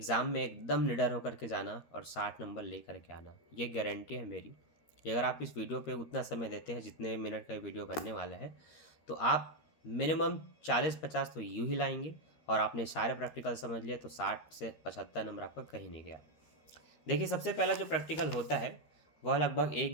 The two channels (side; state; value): right; late; 13 ms